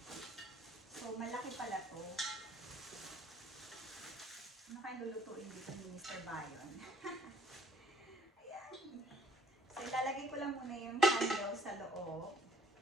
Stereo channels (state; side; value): normal; both; correlation 0.59